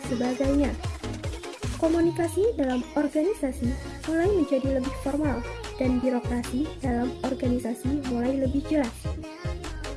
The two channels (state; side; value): identical; both; correlation 1.00